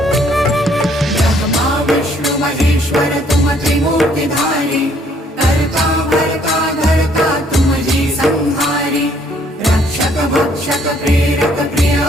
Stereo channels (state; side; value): normal; both; correlation 0.64